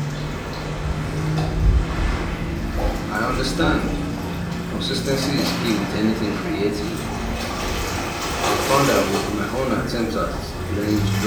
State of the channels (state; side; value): identical; both; correlation 1.00